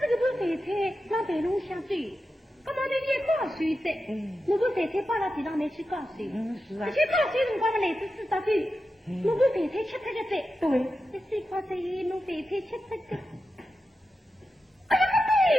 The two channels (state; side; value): normal; both; correlation 0.91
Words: 这个部备菜让备笼下走。那么你也高水的，如果肥菜摆到地上面去高水，是啊。而且高水辰光嘛，来自知道的，如果肥菜吃它个在，对，你水泡在弄肥菜吃它个，哎呀，